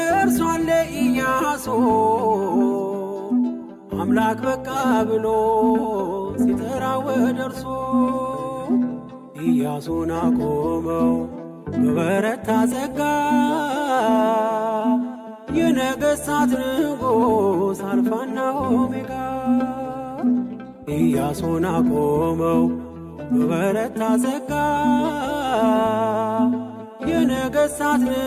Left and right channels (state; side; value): identical; both; correlation 1.00